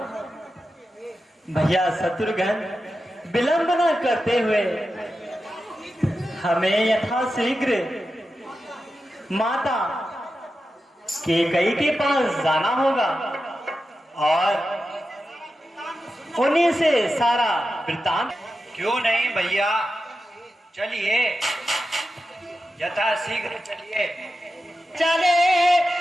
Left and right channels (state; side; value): normal; both; correlation 0.91